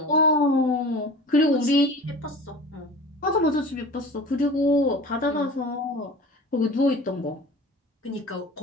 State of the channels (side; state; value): both; normal; correlation 0.39